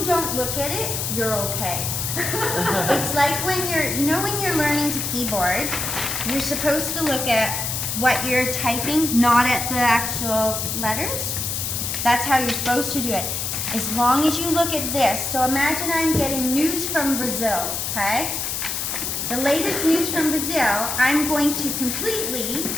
don't look at it, you're okay. It's like when you're learning to keyboard, you're supposed to look at what you're typing, not at the actual letters. That's how you're supposed to do it. As long as you look at this. So imagine I'm getting news from Brazil, okay? The latest news from Brazil, I'm going to completely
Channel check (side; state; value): left; noise; hiss, 2 dB below the sound